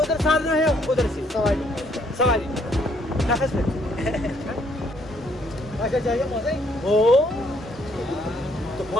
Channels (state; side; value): normal; both; correlation 0.67